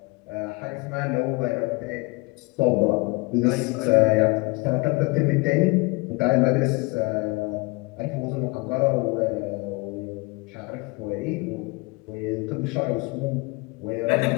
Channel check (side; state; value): right; quieter; 26.6 dB